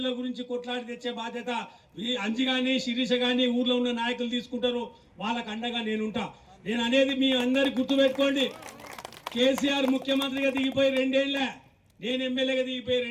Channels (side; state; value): both; identical; correlation 1.00